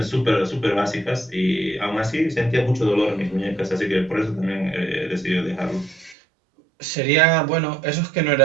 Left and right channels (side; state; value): left; drops out; at 6.2 s